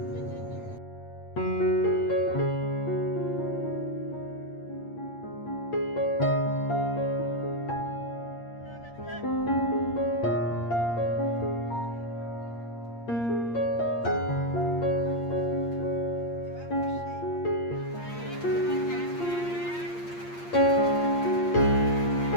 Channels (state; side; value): late; right; 8.6 ms